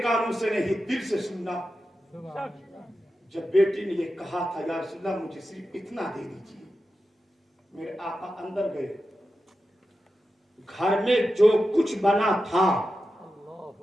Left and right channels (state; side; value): normal; both; correlation 0.91